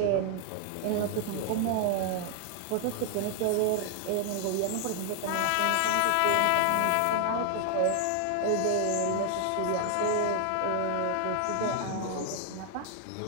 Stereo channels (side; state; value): both; different; correlation 0.00